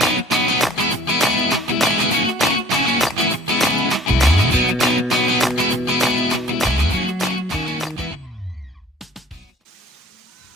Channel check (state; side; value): normal; both; correlation 0.52